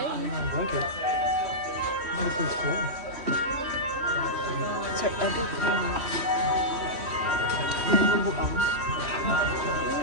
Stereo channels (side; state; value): left; late; 3.1 ms